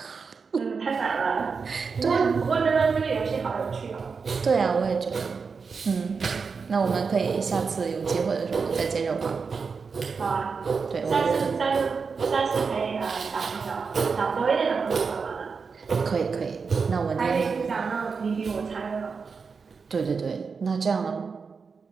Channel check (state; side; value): quieter; left; 5.2 dB